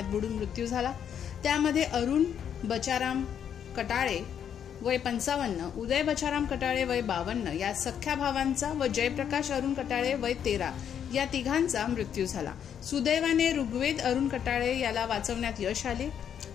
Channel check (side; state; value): right; quieter; 8.7 dB